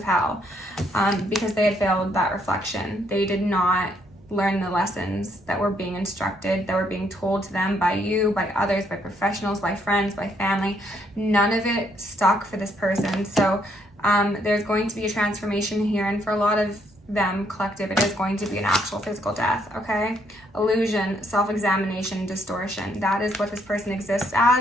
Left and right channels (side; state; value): both; normal; correlation 0.71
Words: hell, because they had failed that reflection. They did not learn the lessons that were being instructed, that were being told to them by you, by others, by professionals, by friends, by family. None of it stuck for this person. So there's going to be a transformation here, and for a lot of them, collective, it is going to be an actual physical death. Okay, illusion, self-examination, distortion. That is what this person exists